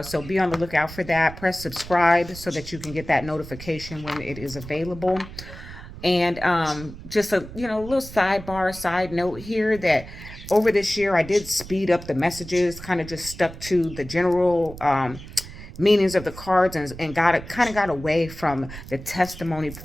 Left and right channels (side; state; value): right; noise; rumble, 14 dB below the sound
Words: So be on the lookout for that. Press subscribe so that you can get that notification when it is available. And just a little side note here that over this year I did speed up the messages, kind of just stuck to the general meanings of the cards and got away from the testimony